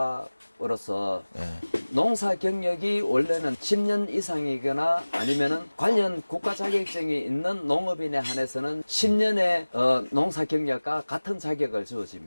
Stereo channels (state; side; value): inverted; both; correlation -1.00